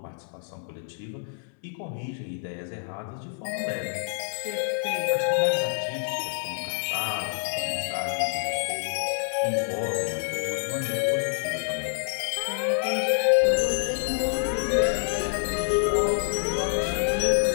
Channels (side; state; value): right; silent; 60 dB below the other